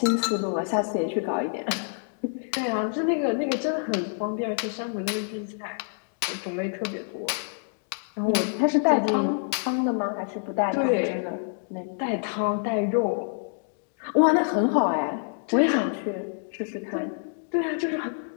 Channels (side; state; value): right; silent; digital silence